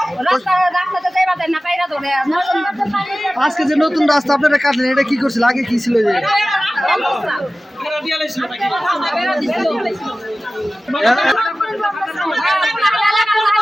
আজকে যে নতুন রাস্তা আপনারা কাটলেন, এটা কি করছিল, আগে কি ছিল?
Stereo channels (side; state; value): both; normal; correlation 0.96